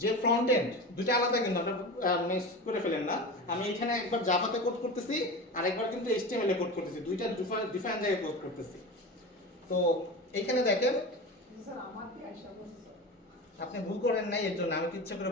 যে ফ্রন্ট এন্ড দুটো আলাদা কিন্তু আপনারা মিক্স করে ফেলেন না। আমি এখানে একবার জাভাতে কোড করতেছি আর একবার কিন্তু এইচটিএমএল এ কোড করতেছি, দুইটা ডিফারেন্ট জায়গায় কোড করতেছি। তো এখানে দেখেন স্যার আমার কি আশা করছে আপনি ভুল করেন নাই, এর জন্য আমি তো ইচ্ছা করে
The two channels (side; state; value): both; normal; correlation 0.28